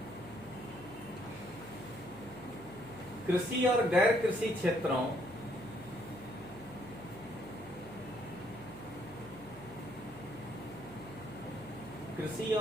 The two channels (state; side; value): noise; right; hum, 18 dB below the sound